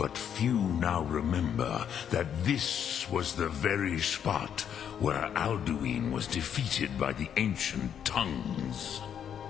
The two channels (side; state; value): right; quieter; 8.7 dB